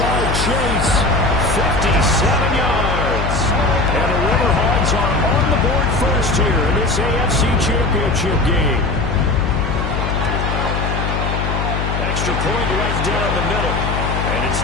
Chase, 57 yards. And the River Hogs are on the board first here in this AFC Championship game. Extra point right down the middle. And it's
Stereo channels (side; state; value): left; noise; hum, 1 dB below the sound